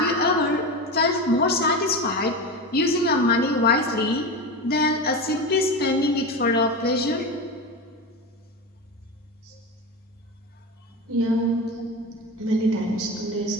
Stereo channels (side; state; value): both; normal; correlation 0.22